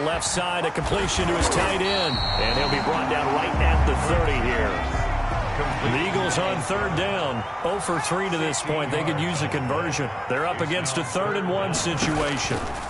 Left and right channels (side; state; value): both; identical; correlation 1.00